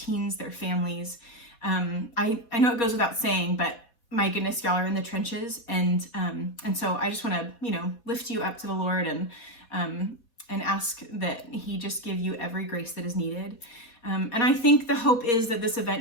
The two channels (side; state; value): right; late; 4.2 ms